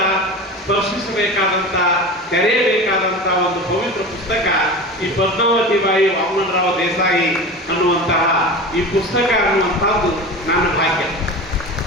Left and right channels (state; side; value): normal; both; correlation 0.30